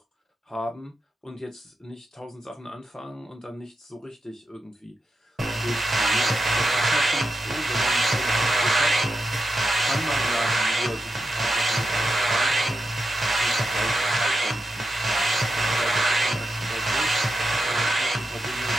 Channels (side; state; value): both; normal; correlation 0.88